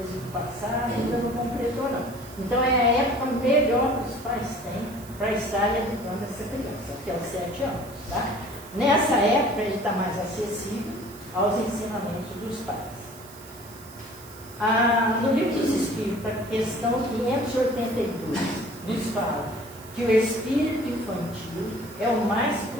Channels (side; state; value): right; noise; hiss, 19 dB below the sound